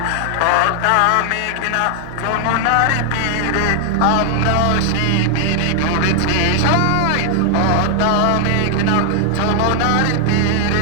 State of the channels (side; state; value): both; different; correlation 0.00